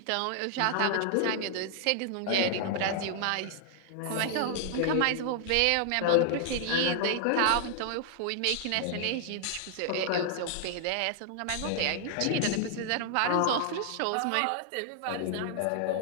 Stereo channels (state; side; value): different; both; correlation -0.01